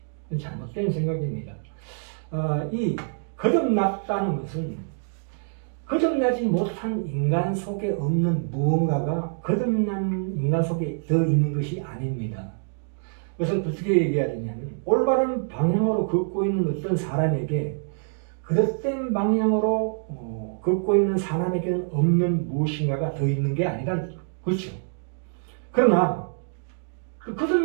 그건 잘못된 생각입니다. 이 거듭났다는 것은 거듭나지 못한 인간 속에 없는 무언가가 거듭난 인간 속에 더 있는 것이 아닙니다. 그래서 어떻게 얘기해야 되냐면, 올바른 방향으로 걷고 있는 어떤 사람에게 그릇된 방향으로 걷고 있는 사람에게는 없는 무엇인가가 더 있는 게 아니라, 그렇죠. 그러나 그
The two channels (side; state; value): left; silent; 61 dB below the other